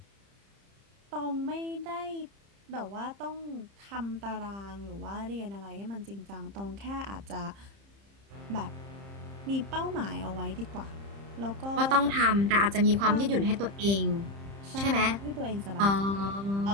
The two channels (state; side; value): late; left; 30 ms